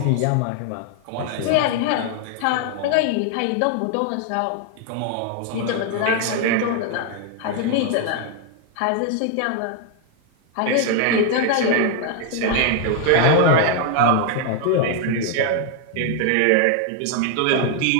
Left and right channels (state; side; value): different; both; correlation 0.00